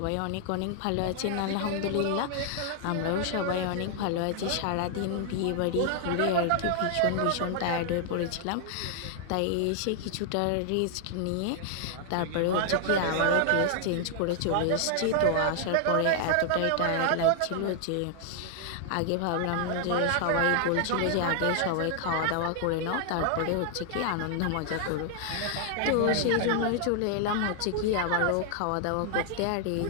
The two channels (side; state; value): both; different; correlation 0.00